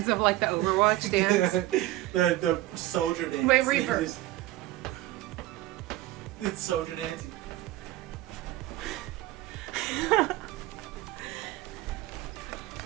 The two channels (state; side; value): quieter; left; 16.3 dB